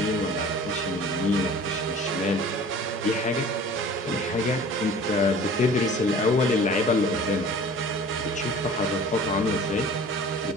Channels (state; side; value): normal; both; correlation 0.45